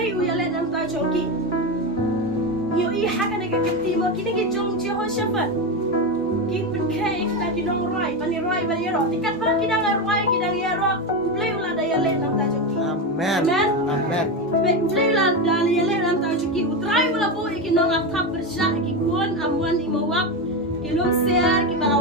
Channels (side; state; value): both; normal; correlation 0.15